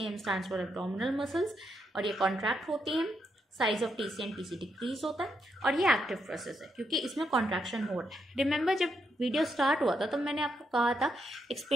stands for abdominal muscles, और ये कॉन्ट्रैक्ट होती हैं, size of TC and TC decrease होता है, और ये एक्टिव प्रोसेस है क्योंकि इसमें कॉन्ट्रैक्शन हो रहा है। रिमेंबर जब वीडियो स्टार्ट हुआ था तो मैंने आपको कहा था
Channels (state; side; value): normal; both; correlation 0.80